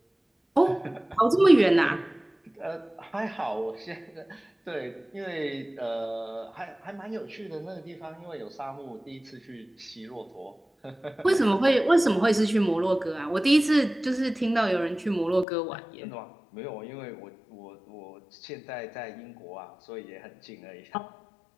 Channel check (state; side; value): drops out; right; at 15.5 s